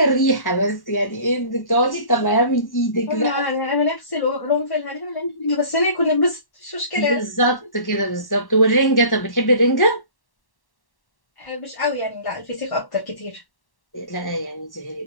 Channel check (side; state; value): right; late; 1.1 ms